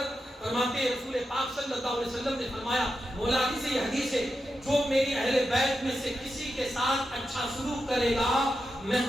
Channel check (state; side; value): normal; both; correlation 0.88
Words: فرماتے ہیں رسول پاک صلی اللہ علیہ وسلم نے فرمایا، مولا علی سے یہ حدیث ہے، جو میری اہل بیت میں سے کسی کے ساتھ اچھا سلوک کرے گا میں